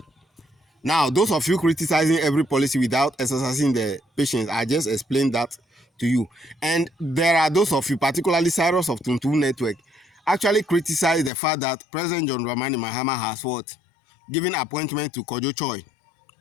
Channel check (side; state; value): right; drops out; at 11.3 s